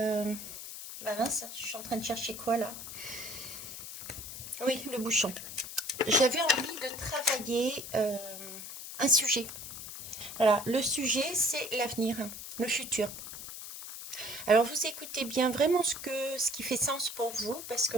Bah mince, je suis en train de chercher quoi là? Oui, le bouchon. J'avais envie de travailler un sujet. Voilà, le sujet c'est l'avenir, le futur. Alors vous écoutez bien vraiment ce qui fait sens pour vous, parce que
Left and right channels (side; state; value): left; noise; hiss, 10 dB below the sound